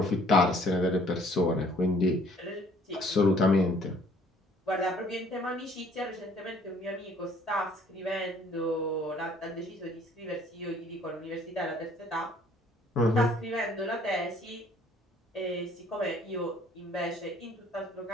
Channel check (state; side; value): normal; both; correlation 0.58